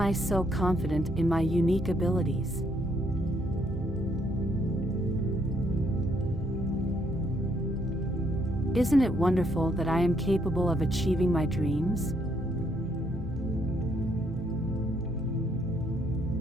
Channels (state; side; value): normal; both; correlation 0.72